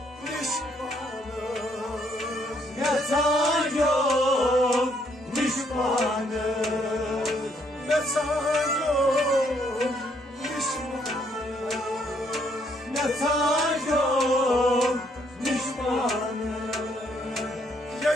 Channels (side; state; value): both; normal; correlation 0.70